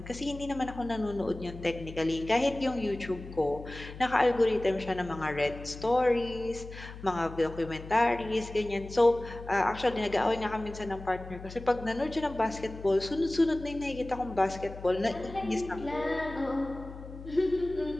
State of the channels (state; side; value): noise; left; hum, 13 dB below the sound